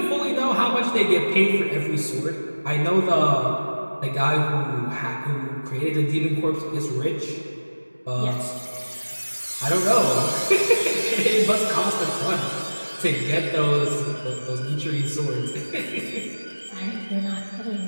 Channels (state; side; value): inverted; both; correlation -1.00